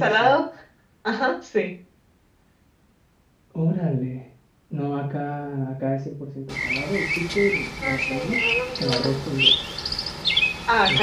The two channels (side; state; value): both; identical; correlation 1.00